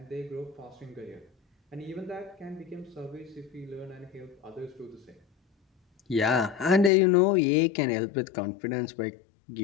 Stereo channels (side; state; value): right; drops out; at 6.9 s